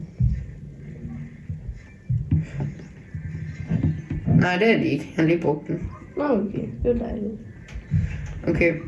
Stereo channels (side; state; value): both; identical; correlation 1.00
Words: Nej, det er de ikke. Jeg har lige brugt den. Nå, okay. Det er dejligt. Okay.